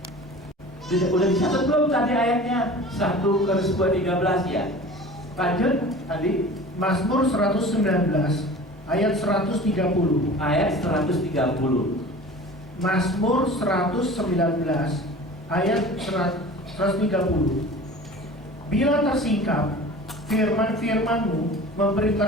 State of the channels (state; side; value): normal; both; correlation 0.40